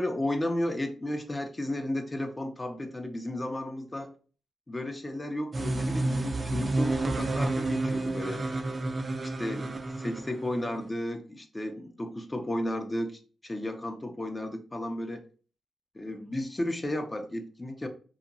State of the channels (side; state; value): both; normal; correlation 0.94